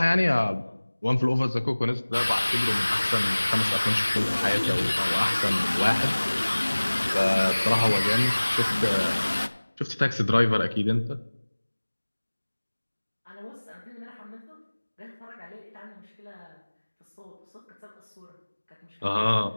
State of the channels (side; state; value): both; inverted; correlation -1.00